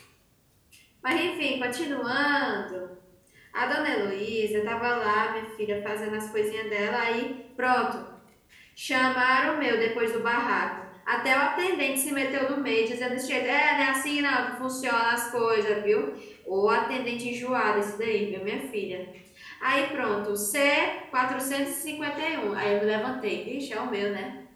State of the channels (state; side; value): identical; both; correlation 1.00